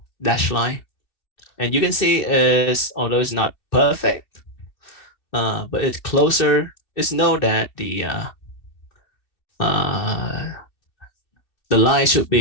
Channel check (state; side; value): late; right; 2.7 ms